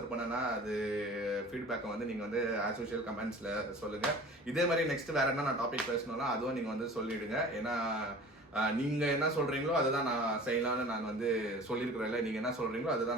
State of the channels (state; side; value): normal; both; correlation 0.42